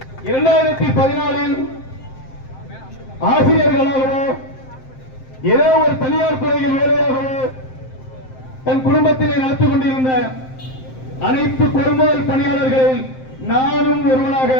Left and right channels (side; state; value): right; late; 7.7 ms